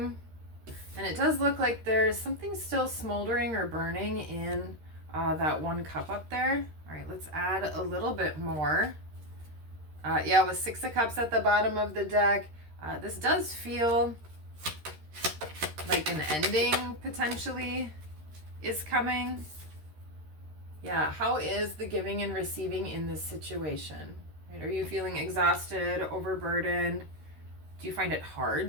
and it does look like there's something still smoldering or burning in that one cup up there. All right, let's add a little bit more. Yeah, with Six of Cups at the bottom of the deck, this does feel like an ending potentially is coming. Yeah, how is the giving and receiving in this situation? Right? Are you feeling exhausted, overburdened? Do you find it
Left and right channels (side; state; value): left; late; 13 ms